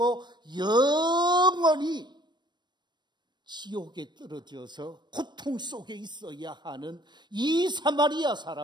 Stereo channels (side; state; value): left; late; 0.22 ms